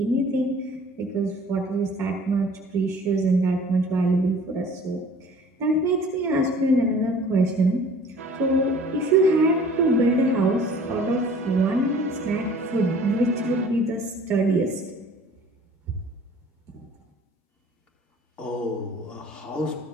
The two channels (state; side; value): normal; both; correlation 0.50